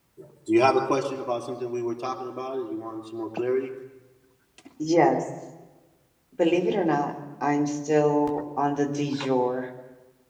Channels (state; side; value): identical; both; correlation 1.00